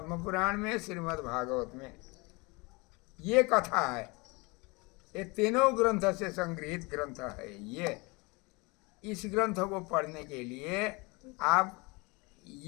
पुराण में, श्रीमद् भागवत में ये कथा है। ये तीनों ग्रंथ से संग्रहित ग्रंथ है। ये इस ग्रंथ को पढ़ने के लिए आप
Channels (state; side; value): quieter; right; 26.9 dB